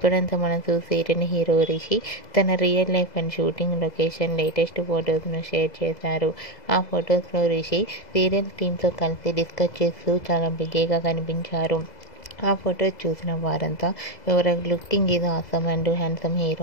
మనసు సీరియల్ హీరో రిషి తన real life and shooting location latest ఫొటోస్ను షేర్ చేశారు. ఆ ఫొటోస్లో రిషి సీరియల్ టీమ్తో కలిసి డిస్కస్ చేస్తూ చాలా బిజీగా కనిపించారు. ఆ ఫొటోస్ చూసిన వారంతా your looking is awesome and handsome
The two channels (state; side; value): late; right; 2.0 ms